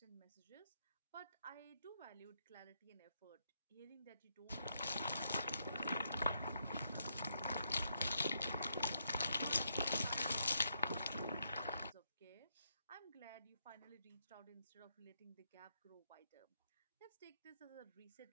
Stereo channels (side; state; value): both; inverted; correlation -0.78